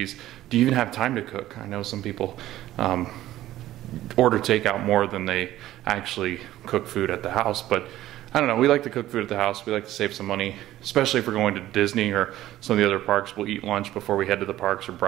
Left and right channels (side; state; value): left; quieter; 14.3 dB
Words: Do you even have time to cook? I know some people order takeout more than they actually cook food at the house, but I don't know, we like to cook food at the house. We like to save some money, especially if we're going to Disney or some of the other parks. We'll eat lunch before we head to the parks or